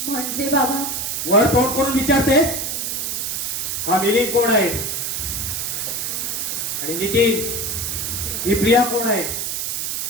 म्हणजे बाबा, वर तोंड करून विचारतेस? हा मिलिंद कोण आहे? आणि नितीन, ही प्रिया कोण आहे?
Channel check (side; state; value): right; noise; hiss, 2 dB below the sound